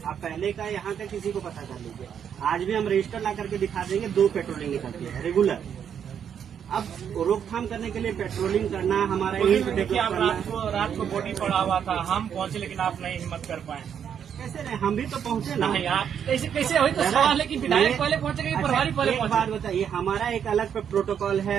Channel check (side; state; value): left; quieter; 8.3 dB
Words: आप पहले का यहाँ का किसी को पता कर लीजिए, आज भी हम रजिस्टर ला करके दिखा देंगे, 2 पेट्रोलिंग निकलती है रेगुलर। अब रोकथाम करने के लिए पेट्रोलिंग करना हमारा देखिए, आप रात को बॉडी पड़ा हुआ था, हम पहुंचे लेकिन आप नहीं हिम्मत कर पाए। कैसे नहीं, हम भी तो पहुंचे ना। नहीं, आप कैसे हुई तो सवाल है कि विधायक पहले पहुंचेगा कि प्रभारी पहले पहुंचे। बात बताइए, हमारा एक अलग प्रोटोकॉल